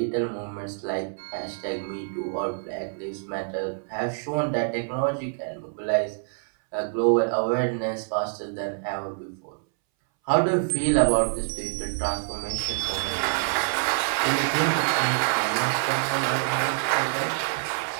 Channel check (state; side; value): silent; left; 61 dB below the other